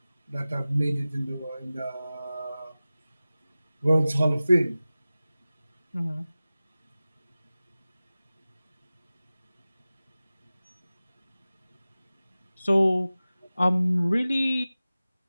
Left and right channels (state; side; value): inverted; both; correlation -0.97